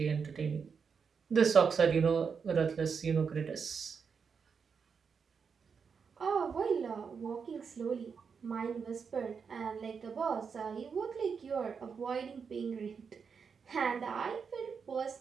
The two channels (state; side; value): quieter; left; 6.0 dB